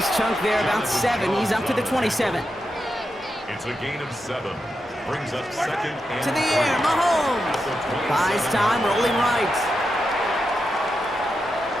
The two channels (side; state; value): both; normal; correlation 0.87